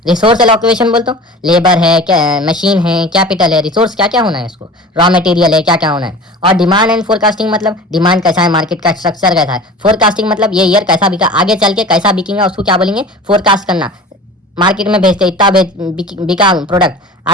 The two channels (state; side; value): normal; both; correlation 0.38